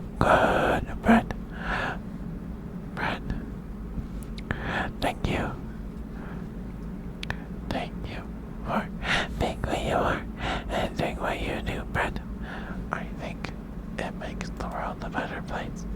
Good bread. Bread. Thank you. Thank you for being who you are and doing what you do, bread. I think it makes the world a better place.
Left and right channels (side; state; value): both; identical; correlation 1.00